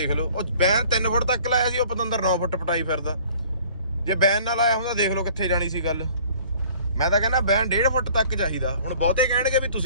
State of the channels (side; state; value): both; inverted; correlation -0.52